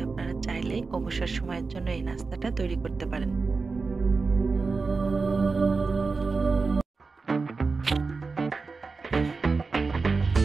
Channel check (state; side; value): quieter; left; 4.3 dB